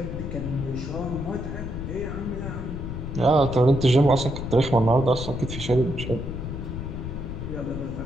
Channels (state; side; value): noise; left; rumble, 6 dB below the sound